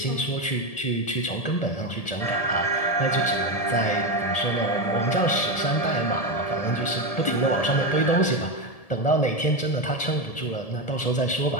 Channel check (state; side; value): late; right; 1.7 ms